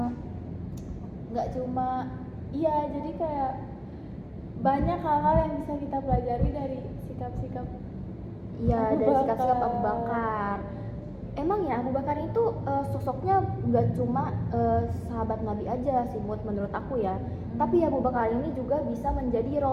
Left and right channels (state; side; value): identical; both; correlation 1.00